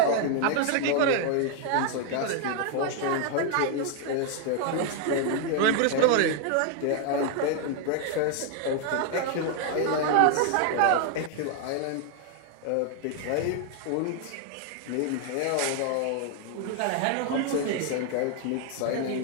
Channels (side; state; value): both; different; correlation 0.00